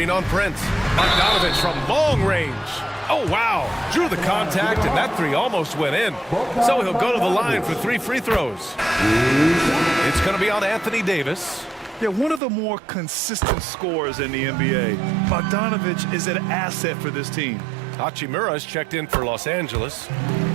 on Prince. Bogdanovich from long range. Oh, wow. Drew the contact, and that three almost went in. So he'll go to the line for 3 free throws. It's going to be on Anthony Davis. Yeah, one of the more consistent scorers in the NBA. Bogdanovich is an asset for this team. Hachimura's checked in for Los Angeles.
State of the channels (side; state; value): left; drops out; at 12.4 s